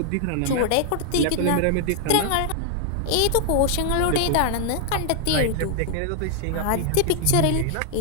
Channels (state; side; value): different; both; correlation -0.01